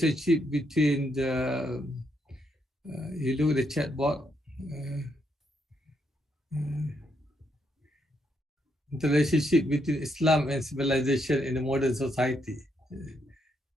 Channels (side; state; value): both; normal; correlation 0.77